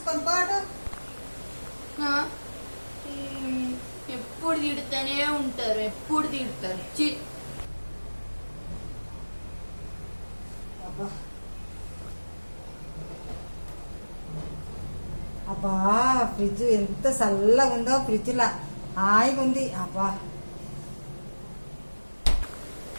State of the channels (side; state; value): both; inverted; correlation -1.00